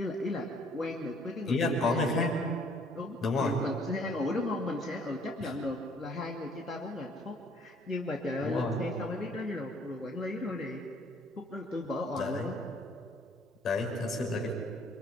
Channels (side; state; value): both; normal; correlation 0.60